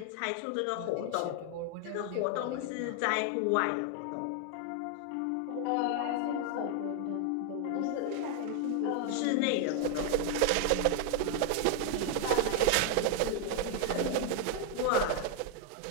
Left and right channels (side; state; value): both; different; correlation 0.00